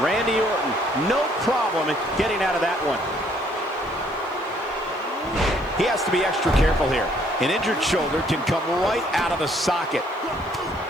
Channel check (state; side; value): noise; left; hiss, 29 dB below the sound